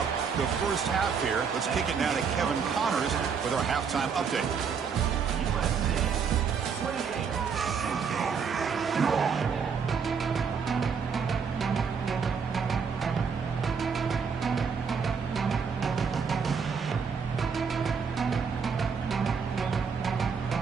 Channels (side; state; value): left; quieter; 6.1 dB